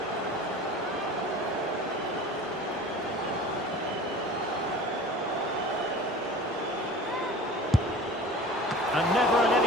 And never in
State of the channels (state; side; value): normal; both; correlation 0.40